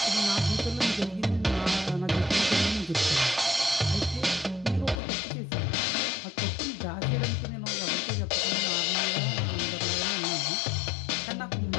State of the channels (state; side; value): drops out; right; at 5.0 s